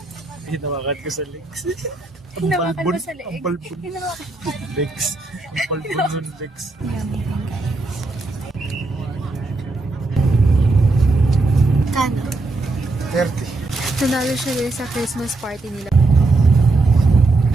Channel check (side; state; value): left; quieter; 3.3 dB